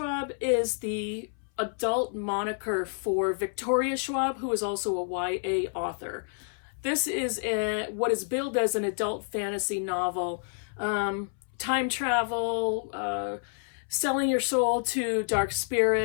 is the adult moniker for Victoria Schwab, who is also a YA author. This is what is billed as an adult fantasy novel. Time travel, selling your soul to dark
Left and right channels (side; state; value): right; silent; 59 dB below the other